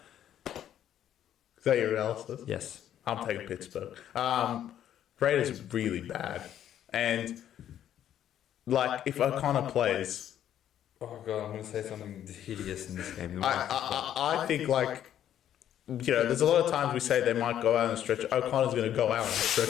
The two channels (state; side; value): quieter; right; 10.7 dB